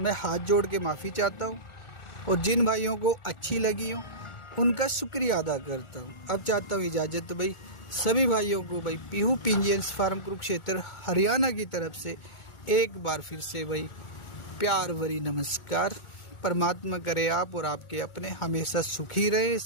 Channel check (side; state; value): right; late; 1.4 ms